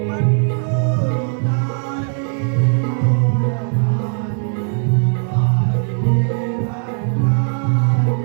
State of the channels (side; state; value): left; silent; 58 dB below the other